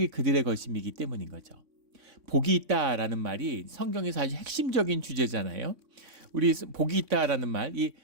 그들의 것임이기 때문인 거죠. 복이 있다라는 말이 성경에서 아주 핵심적인 주제잖아요. 우리 복이 있다라는 말, 이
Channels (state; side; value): late; left; 3.6 ms